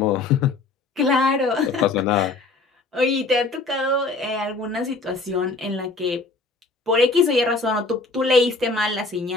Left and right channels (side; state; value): right; quieter; 3.7 dB